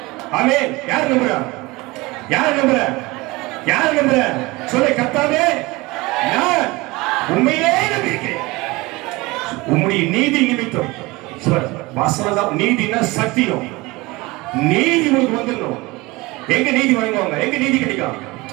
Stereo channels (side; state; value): left; quieter; 22.4 dB